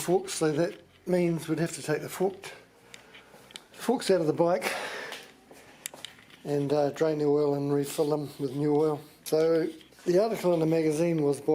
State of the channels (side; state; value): both; identical; correlation 1.00